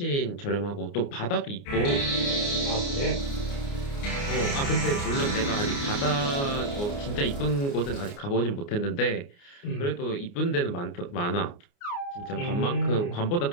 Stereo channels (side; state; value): right; late; 29 ms